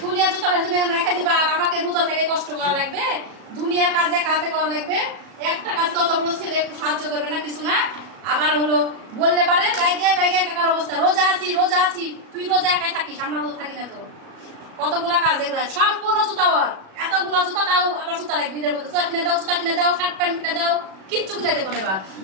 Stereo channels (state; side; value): late; left; 37 ms